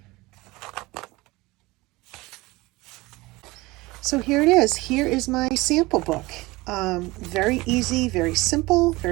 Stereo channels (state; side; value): quieter; left; 21.5 dB